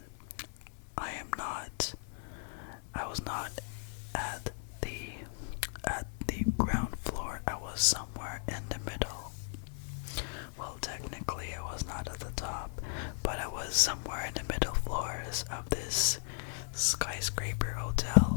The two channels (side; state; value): right; silent; digital silence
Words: I was not at the ground floor. I was somewhere in the middle. Well, technically I was not at the top, but I was somewhere in the middle floors of this skyscraper